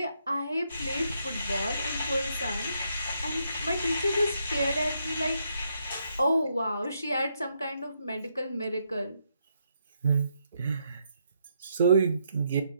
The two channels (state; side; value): inverted; both; correlation -0.77